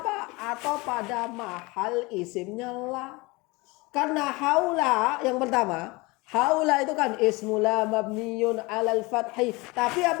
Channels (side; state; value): right; quieter; 24.3 dB